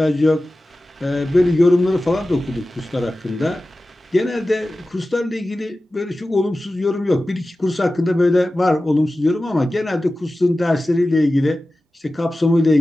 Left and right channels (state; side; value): normal; both; correlation 0.95